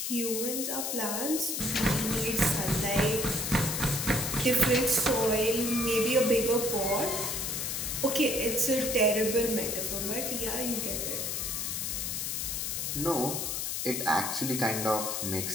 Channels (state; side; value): noise; left; hiss, 2 dB below the sound